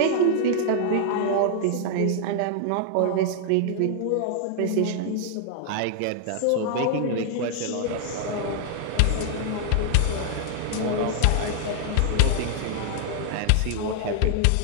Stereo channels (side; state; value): both; different; correlation 0.00